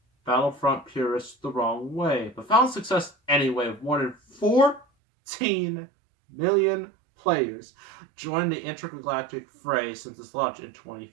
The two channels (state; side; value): drops out; left; at 4.9 s